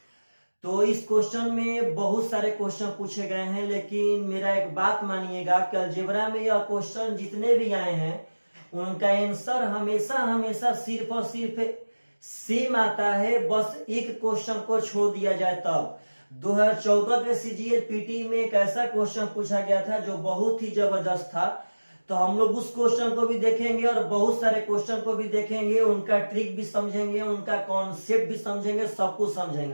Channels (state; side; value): inverted; both; correlation -1.00